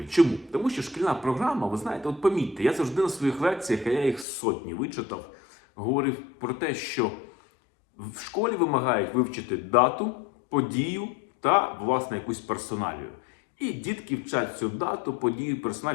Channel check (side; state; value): right; drops out; at 4.2 s